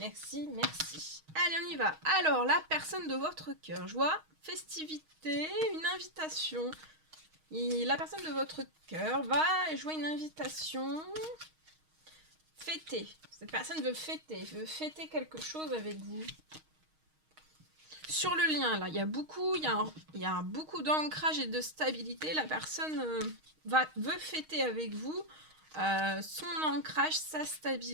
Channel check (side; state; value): left; late; 6.4 ms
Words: on y va. Alors, la personne de votre cœur. Je vois festivité, une invitation. Et la personne de votre cœur va jouer une invitation. Fêter. Cette personne veut fêter quelque chose avec vous. Sur le lien, là, il y a beaucoup d'ancrage et de stabilité. La personne veut fêter avec vous son ancrage, sa